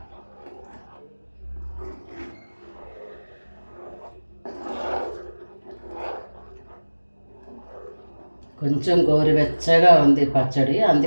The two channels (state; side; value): inverted; both; correlation -1.00